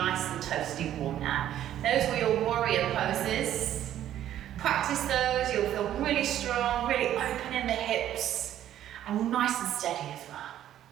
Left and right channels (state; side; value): quieter; left; 11.7 dB